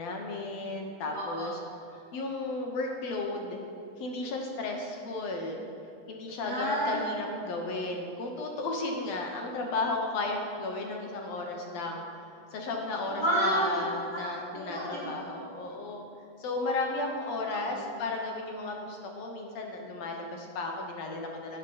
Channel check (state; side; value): late; right; 8.2 ms